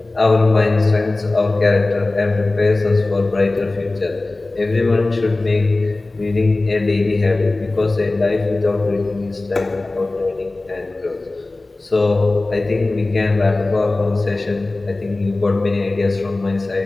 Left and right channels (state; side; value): quieter; right; 3.1 dB